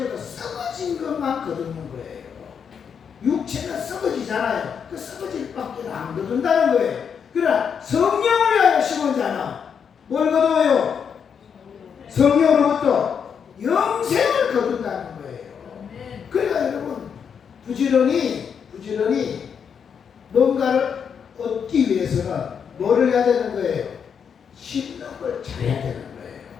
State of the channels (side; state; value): right; quieter; 7.1 dB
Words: 썩어진 것만 거두는 거예요. 육체는 썩어지잖아요. 그 썩어질 밖에 안 거둔다는 거예요. 그러나 성령을 위하여 심은 자는 뭘 거둬요? 성령으로부터 영생을 거둔다는 거예요. 그러니까 여러분 부지런히 뭔가를 얻기 위해서는 뭐를 해야 되는 거예요? 심는 걸 잘해야 되는